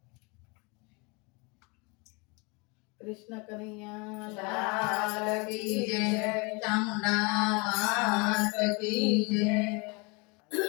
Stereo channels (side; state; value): right; quieter; 29.4 dB